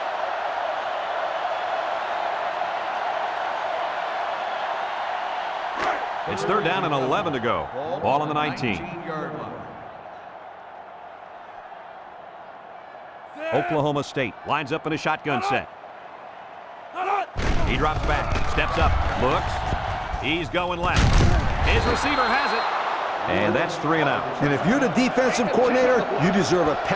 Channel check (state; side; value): identical; both; correlation 1.00